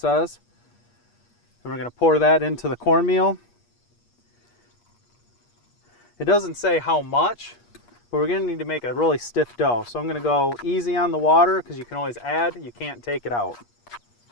And we're going to pour that into the cornmeal. It doesn't say how much, but we're going to need to make a really stiff dough. So I'm going to go easy on the water because you can always add, you can't take it out.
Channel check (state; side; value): late; right; 8.4 ms